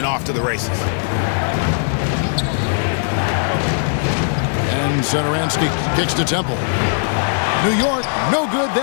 off to the races. And Satoransky kicks to Temple. New York, no good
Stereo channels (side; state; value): right; silent; digital silence